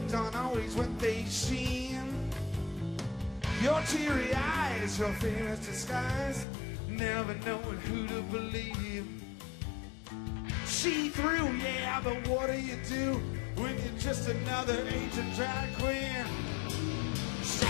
aren't always what they seem. Your teary eyes, your fear's disguise, never knowing who to believe. See through, yeah, but what do you do when you're just another agent drag queen?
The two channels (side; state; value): right; drops out; at 6.5 s